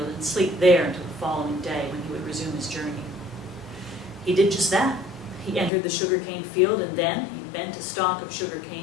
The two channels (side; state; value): right; drops out; at 5.7 s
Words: and sleep there until the following day when he would resume his journey. He did just that. He entered the sugarcane field, and then he bent a stalk of